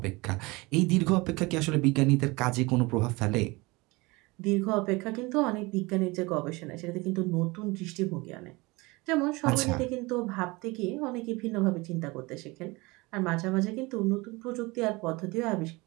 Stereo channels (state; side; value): quieter; left; 23.9 dB